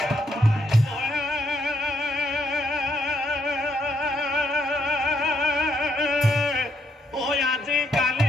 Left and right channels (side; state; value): both; normal; correlation 0.75